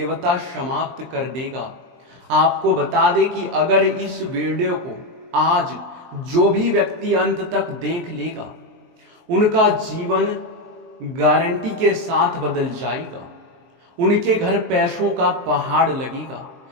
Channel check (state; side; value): late; left; 23 ms